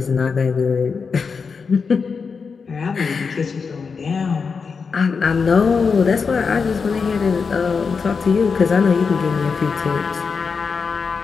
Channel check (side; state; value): right; quieter; 5.3 dB